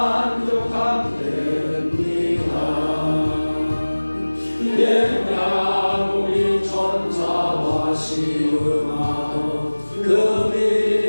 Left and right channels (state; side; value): inverted; both; correlation -1.00